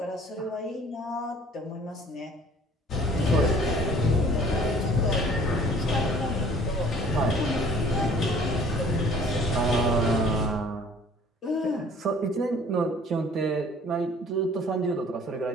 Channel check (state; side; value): normal; both; correlation 0.52